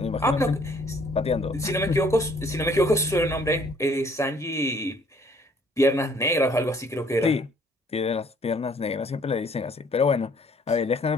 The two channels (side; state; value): both; normal; correlation 0.60